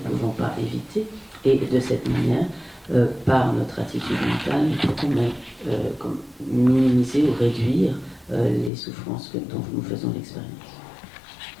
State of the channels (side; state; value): right; drops out; at 8.7 s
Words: pas éviter. Et de cette manière, par notre attitude mentale, nous pouvons minimiser ou réduire les souffrances dont nous faisons l'expérience.